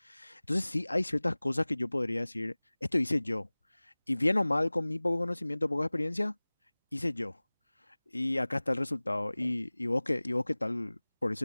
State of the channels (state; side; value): inverted; both; correlation -1.00